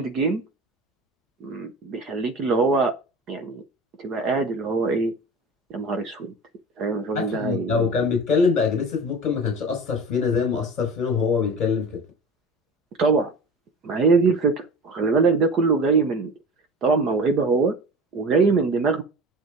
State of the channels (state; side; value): normal; both; correlation 0.35